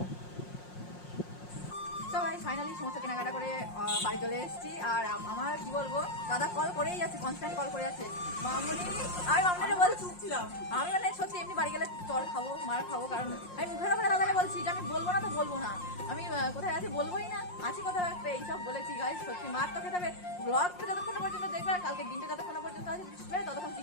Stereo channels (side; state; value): right; late; 5.6 ms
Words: তো ভাই ফাইনালি সমস্ত কেনাকাটা করে বাড়ি চলে এসেছি। আর আমার কি বলবো, দাদা কল করেই যাচ্ছে, কনস্ট্যান্ট কল করে যাচ্ছে। মামুনি, আমি মামুনিকে বলছিলাম, আমি মানে সত্যি এমনি বাড়ি গেলে চল খাবো, মার খাবো, কারণ আমি মুখের ওপরে দাদাকে বলছি যে আমি বলবো না তো বলবো না, আমি কোথায় আছি বলবোই না, আছি কোথাও একটা, এইসব বলেছি। গাই সত্যি মার তো খেতে হবে। ব্লগটা যতক্ষণ পর্যন্ত দেখবে আর কালকে দিনটা যতক্ষণ পর্যন্ত আসবে ততক্ষণ